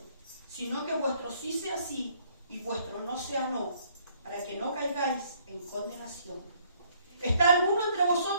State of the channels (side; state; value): both; inverted; correlation -0.64